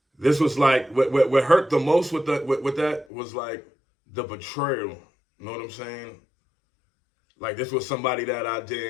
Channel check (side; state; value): right; drops out; at 3.1 s